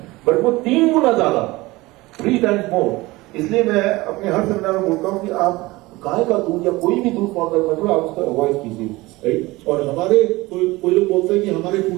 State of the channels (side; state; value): left; quieter; 20.8 dB